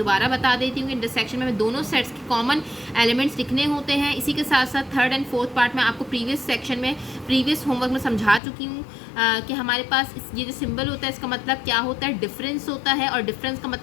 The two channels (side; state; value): right; drops out; at 8.4 s